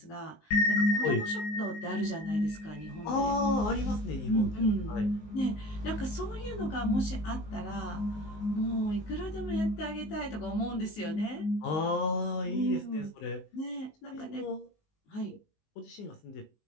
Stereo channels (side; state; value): right; late; 19 ms